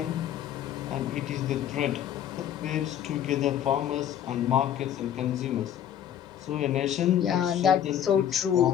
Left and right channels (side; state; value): right; quieter; 10.2 dB